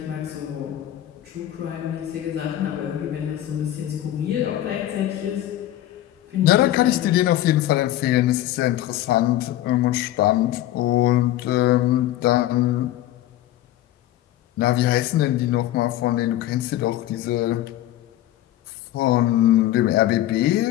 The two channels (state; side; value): quieter; right; 13.8 dB